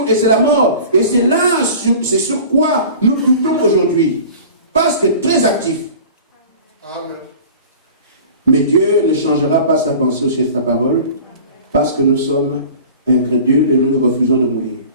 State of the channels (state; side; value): inverted; both; correlation -0.41